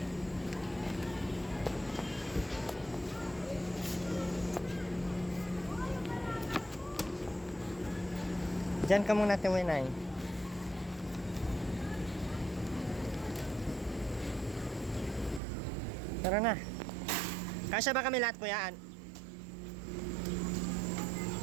Diyan ka muna, Tiwinay. Tara na. Kasya ba kami lahat, kuya?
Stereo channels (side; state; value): left; drops out; at 15.4 s